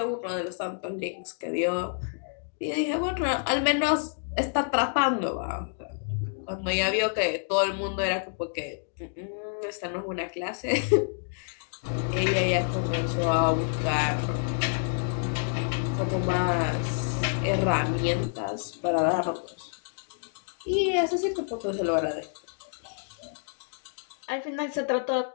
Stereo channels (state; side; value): silent; right; digital silence